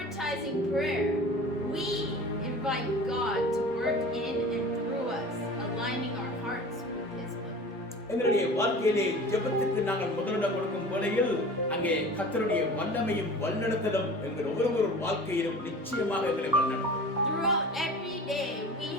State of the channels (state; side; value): normal; both; correlation 0.39